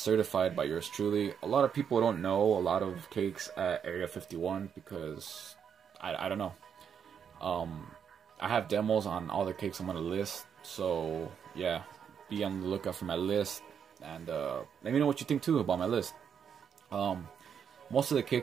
certified by yours truly. A lot of people don't know a lot of cakes at Area 51 because I don't know. I have demos on all the cakes I'm going to list. So, yeah, be on the lookout for my list, and let me know what you think, too, about my list. Most of the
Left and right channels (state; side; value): quieter; left; 7.6 dB